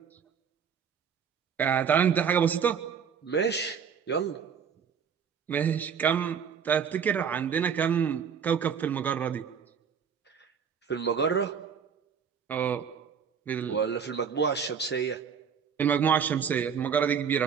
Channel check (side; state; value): left; quieter; 7.1 dB